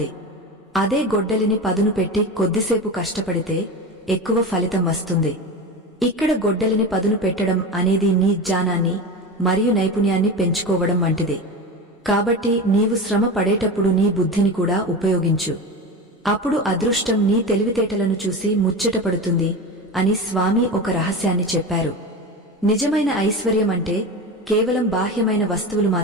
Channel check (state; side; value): normal; both; correlation 0.25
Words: అదే గొడ్డలిని పదును పెట్టి కొద్దిసేపు కష్టపడితే ఎక్కువ ఫలితం వస్తుంది. ఇక్కడ గొడ్డలిని పదును పెట్టడం అనేది నీ జ్ఞానాన్ని మరియు నైపుణ్యాన్ని పెంచుకోవడం వంటిది. కాబట్టి నీవు శ్రమ పడేటప్పుడు నీ బుద్ధిని కూడా ఉపయోగించు. అప్పుడు అదృష్టం నీ తెలివితేటలను చూసి ముచ్చటపడుతుంది అని స్వామి ఒక రహస్యాన్ని చెప్పారు. నిజమైన ఐశ్వర్యం అంటే కేవలం బాహ్యమైన వస్తువులు